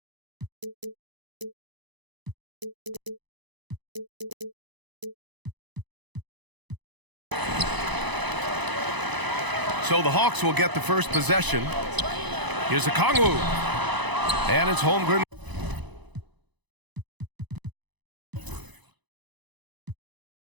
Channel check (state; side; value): late; left; 1.0 ms